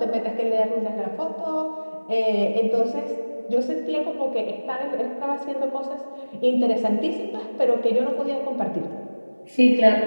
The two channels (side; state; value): both; inverted; correlation -1.00